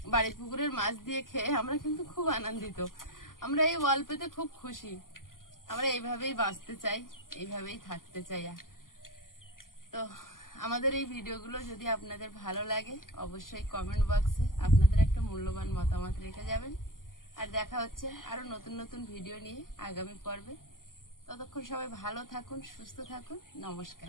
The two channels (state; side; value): late; right; 0.91 ms